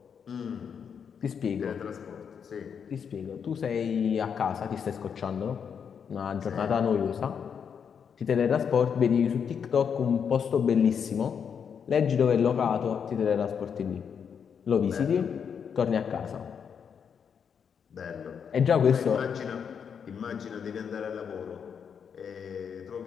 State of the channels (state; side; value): quieter; right; 7.1 dB